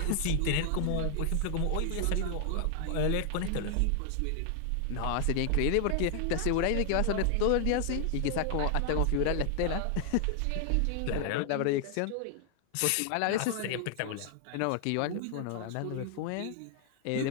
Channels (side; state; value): both; different; correlation 0.00